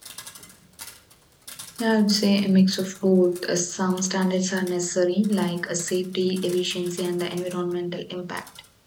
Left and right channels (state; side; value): identical; both; correlation 1.00